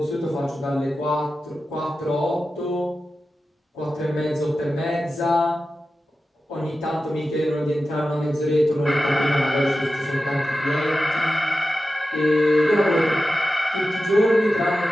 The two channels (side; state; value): both; normal; correlation 0.93